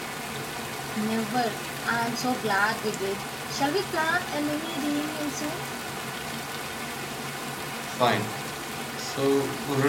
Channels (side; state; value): both; identical; correlation 1.00